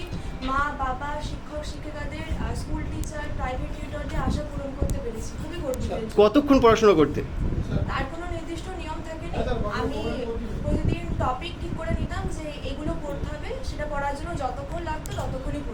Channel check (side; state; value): both; identical; correlation 1.00